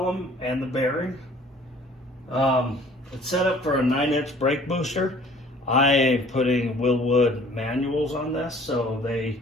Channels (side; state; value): both; normal; correlation 0.52